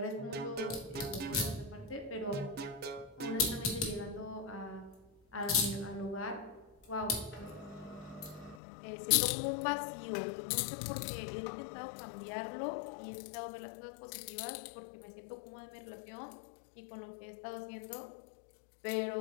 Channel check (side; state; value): right; drops out; at 8.6 s